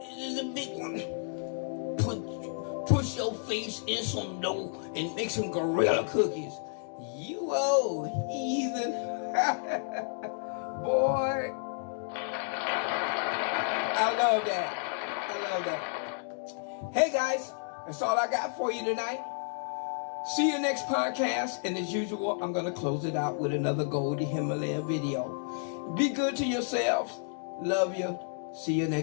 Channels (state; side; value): silent; right; digital silence